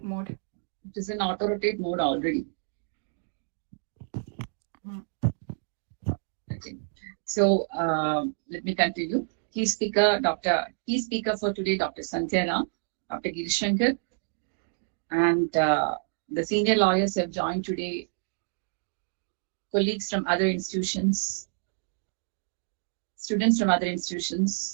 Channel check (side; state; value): left; silent; digital silence